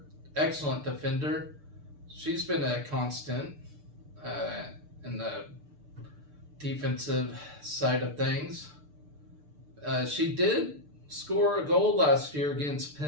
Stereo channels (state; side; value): late; left; 6.8 ms